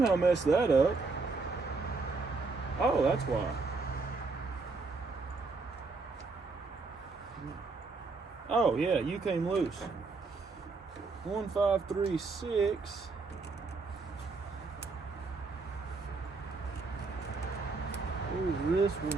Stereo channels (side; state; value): left; quieter; 4.0 dB